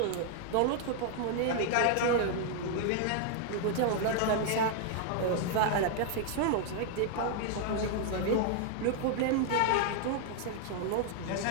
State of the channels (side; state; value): both; different; correlation 0.00